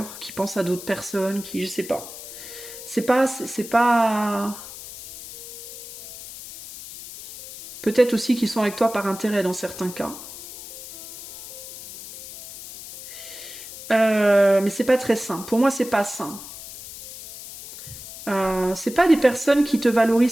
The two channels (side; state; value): left; noise; hiss, 13 dB below the sound